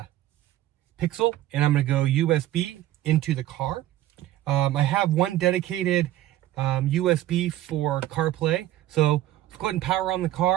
Pixel, and I'm going to go USB into the car. I have one dedicated USB for CarPlay, so let's go ahead and power on the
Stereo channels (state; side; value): quieter; left; 14.2 dB